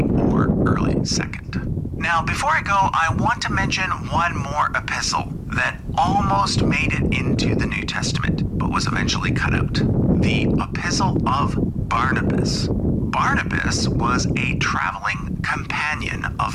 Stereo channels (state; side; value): identical; both; correlation 1.00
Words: or early 2nd. Now, before I go, I want to mention one more epistle that almost made it into the New Testament, but was eventually cut out. The Epistle of Barnabas. Barnabas was a traveling companion